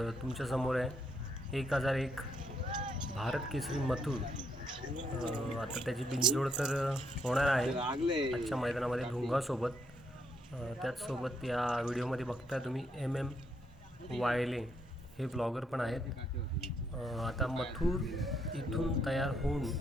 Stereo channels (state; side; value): normal; both; correlation 0.74